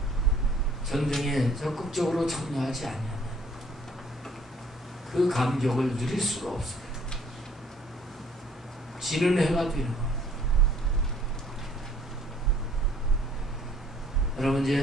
전쟁에 적극적으로 참여하지 아니하면 그 감격을 누릴 수가 없어요. 지는 해가 되는 거예요. 여러분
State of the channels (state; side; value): normal; both; correlation 0.59